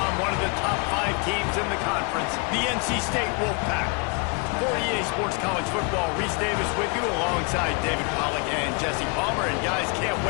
one of the top 5 teams in the conference, the NC State Wolfpack. For EA Sports College Football, Reese Davis with you alongside David Pollack and Jesse Palmer. And guys, can't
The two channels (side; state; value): right; quieter; 32.9 dB